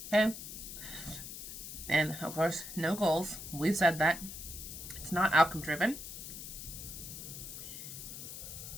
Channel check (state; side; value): noise; left; hiss, 9 dB below the sound